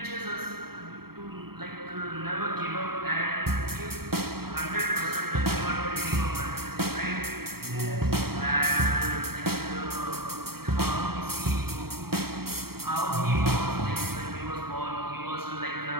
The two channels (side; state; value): left; late; 0.95 ms